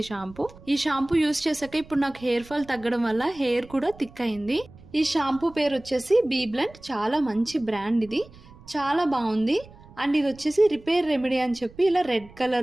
షాంపూ. ఈ షాంపూ యూజ్ చేశాక ఇప్పుడు నాకు హెయిర్ ఫాల్ తగ్గడం వల్ల హెయిర్ కూడా థిక్ అయింది. ఈ షాంపూ పేరు వచ్చేసి బీ బ్లెండ్. చాలా మంచి బ్రాండ్, ఇది చాలా బాగుంది. అండ్ ఇది వచ్చేసి రిపేర్ రెమెడీ అని చెప్పి ఇలా రెడ్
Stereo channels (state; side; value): noise; right; rumble, 22 dB below the sound